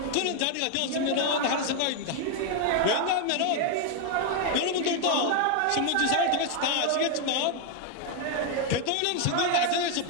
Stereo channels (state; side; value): different; both; correlation 0.01